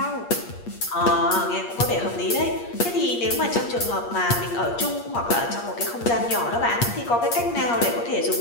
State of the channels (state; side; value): late; right; 8.5 ms